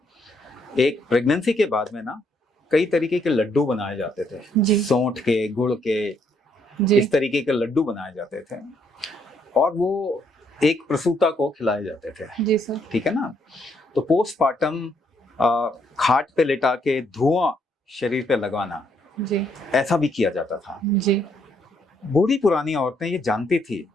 एक प्रेगनेंसी के बाद में ना कई तरीके के लड्डू बनाए जाते थे, सौंठ के, गुड़ के, इस तरीके के लड्डू बनाए जाते थे और वो एक प्रसूता को खिलाए जाते थे। जी सर। ठीक है ना। तो पोस्टमार्टम खाट पे लेटा के धुआं शरीर पे लगवाना, जी, ऐसा भी किया जाता था। जी। बूढ़ी पुरानी औरतें ये जानती थी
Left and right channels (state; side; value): normal; both; correlation 0.72